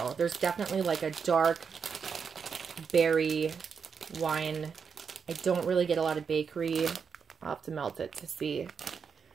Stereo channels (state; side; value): quieter; left; 6.2 dB